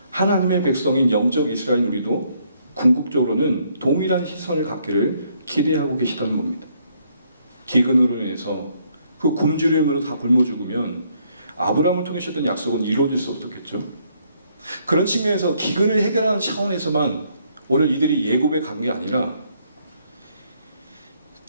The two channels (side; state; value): both; inverted; correlation -0.70